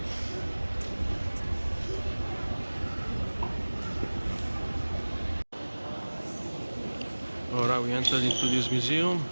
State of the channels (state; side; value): inverted; both; correlation -1.00